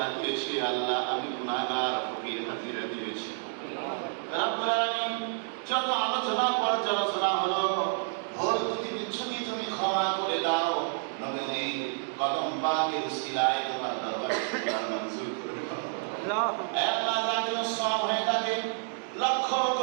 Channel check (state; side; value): silent; left; 58 dB below the other